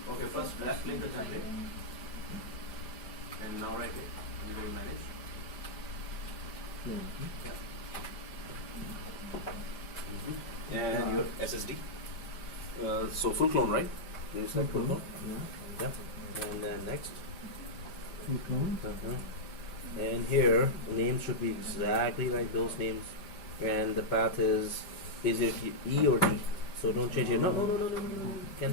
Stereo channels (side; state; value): right; late; 5.0 ms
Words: okay. First, left click the template, and now right click and go to manage. Clone. And your SSD. So full clone, right? You said full clone. Yeah. Yeah. And then next. Full clone. And here the names should be exactly like those names, and the path is it E or D? So don't change it. No.